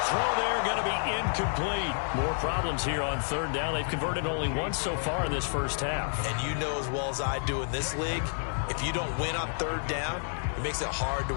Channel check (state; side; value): silent; right; digital silence